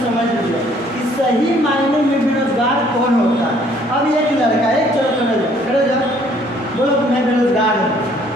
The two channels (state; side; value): normal; both; correlation 0.61